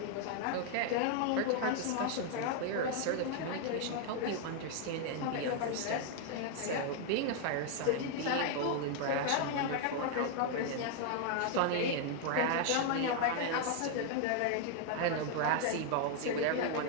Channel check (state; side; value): different; both; correlation 0.00